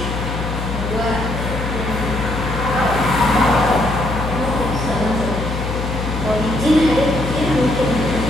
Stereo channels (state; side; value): noise; left; hum, 4 dB below the sound